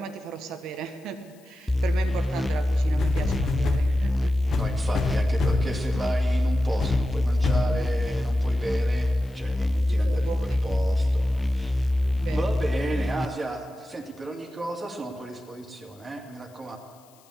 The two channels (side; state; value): left; noise; hiss, 30 dB below the sound